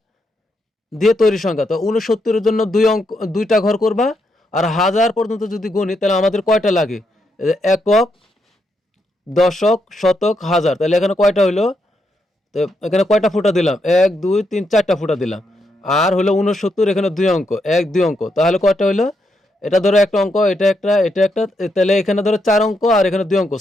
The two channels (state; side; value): normal; both; correlation 0.80